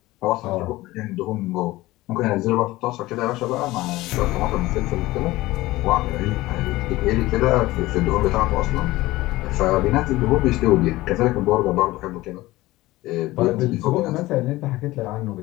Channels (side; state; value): right; quieter; 18.4 dB